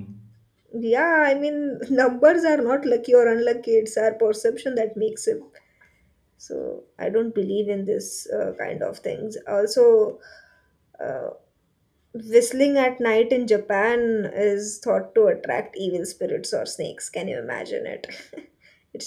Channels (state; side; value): identical; both; correlation 1.00